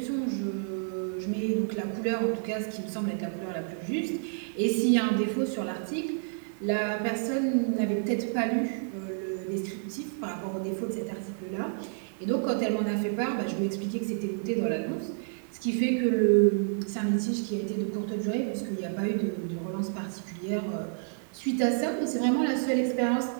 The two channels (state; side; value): silent; left; 58 dB below the other